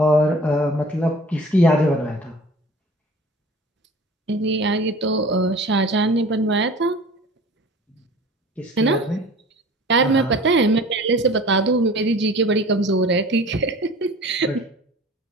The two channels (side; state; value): both; normal; correlation 0.43